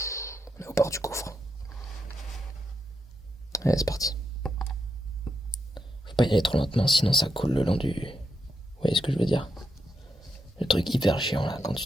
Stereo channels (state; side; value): normal; both; correlation 0.83